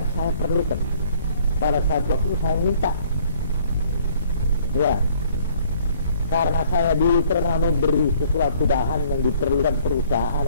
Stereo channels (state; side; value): inverted; both; correlation -0.59